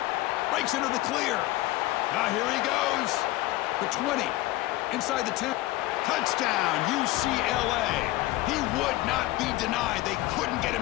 Breaks into the clear. Now here he goes. The 20, inside the 10. Touchdown, UCLA. He would not be denied. They couldn't get him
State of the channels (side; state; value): right; quieter; 17.6 dB